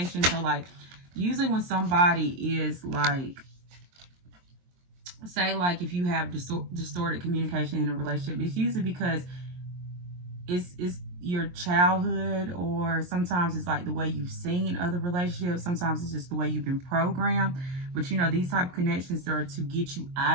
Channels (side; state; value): left; late; 23 ms